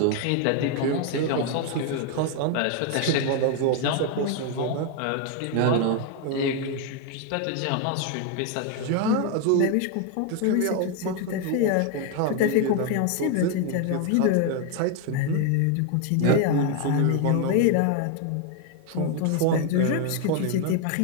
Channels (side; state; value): both; different; correlation 0.01